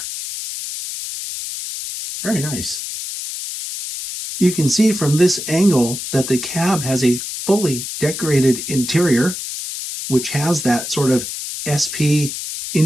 Very nice. You can see from this angle that the cab has a fully decorated interior, which has that sort of SP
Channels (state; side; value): noise; left; hiss, 7 dB below the sound